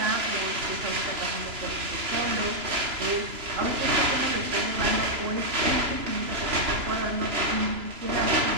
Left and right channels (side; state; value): left; late; 3.0 ms